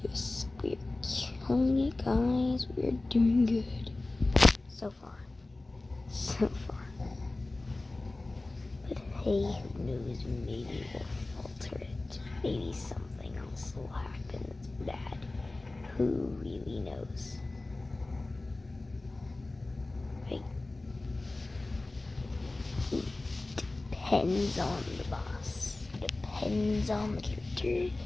Yes, we're killing it, guys. We're doing good. So far. But hey, who knows, maybe we'll falter it. Maybe something else will happen that's bad. Who really knows? Right? It depends on the boss. Depends on the character.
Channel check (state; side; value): quieter; right; 3.0 dB